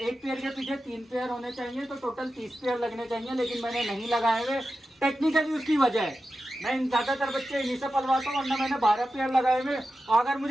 एक पेयर के पीछे 3 पेयर होने चाहिए, तो टोटल 30 पेयर लगने चाहिए, लेकिन मैंने नहीं लगाए हुए। टेक्निकली उसकी वजह है, मैं ज़्यादातर बच्चे इन्हीं से पलवाता हूँ, वरना मैंने 12 पेयर लगाए हुए। और अगर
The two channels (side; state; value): both; normal; correlation 0.92